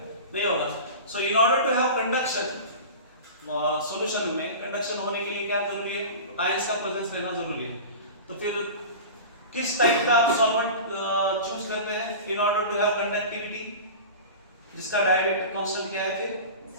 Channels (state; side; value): inverted; both; correlation -0.32